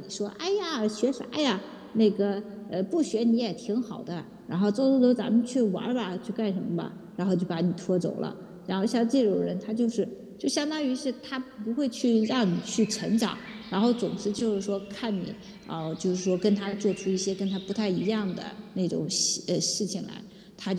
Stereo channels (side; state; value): both; identical; correlation 1.00